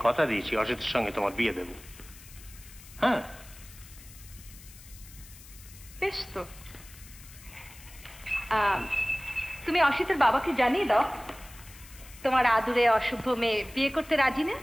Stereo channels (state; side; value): noise; left; hiss, 19 dB below the sound